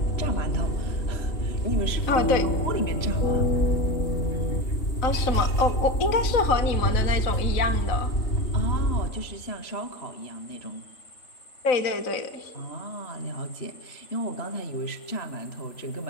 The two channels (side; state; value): right; late; 3.9 ms